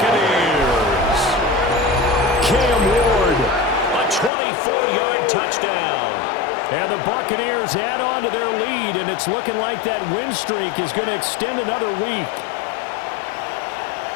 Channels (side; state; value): right; drops out; at 4.3 s